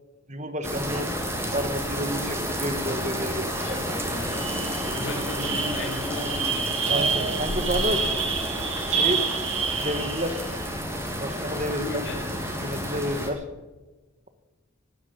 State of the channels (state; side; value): normal; both; correlation 0.36